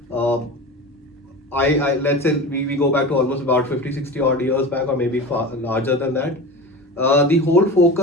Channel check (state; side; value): normal; both; correlation 0.31